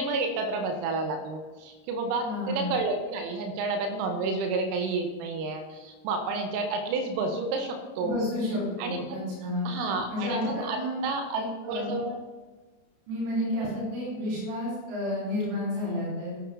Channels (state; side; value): late; left; 32 ms